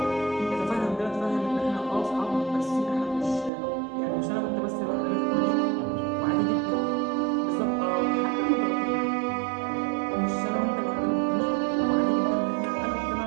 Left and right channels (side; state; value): left; drops out; at 3.5 s